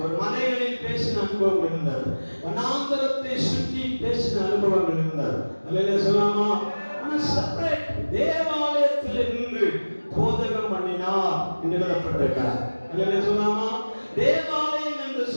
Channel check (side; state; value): both; inverted; correlation -1.00